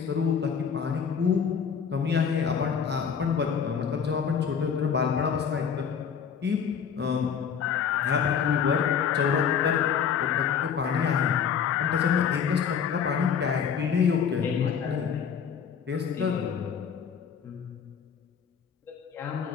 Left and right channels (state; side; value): quieter; right; 7.2 dB